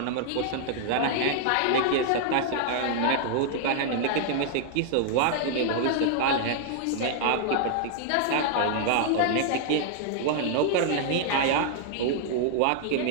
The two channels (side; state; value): both; different; correlation -0.01